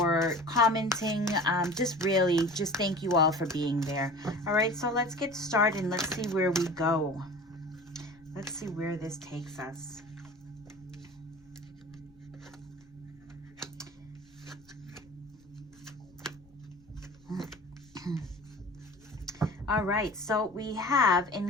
commenting. Just thank you all for being there. All right, so let's get started and let's see where we go. Let's see where this takes us. All right, so we have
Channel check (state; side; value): noise; left; rumble, 29 dB below the sound